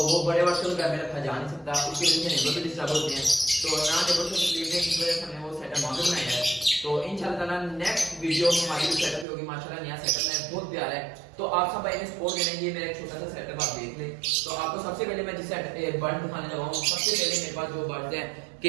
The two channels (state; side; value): drops out; left; at 9.2 s